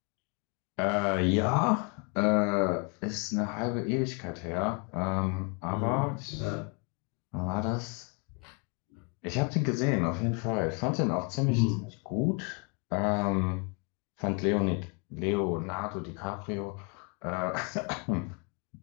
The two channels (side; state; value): right; quieter; 32.6 dB